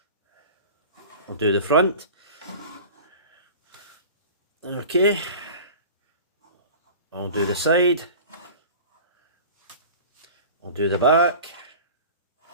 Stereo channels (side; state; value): both; inverted; correlation -0.38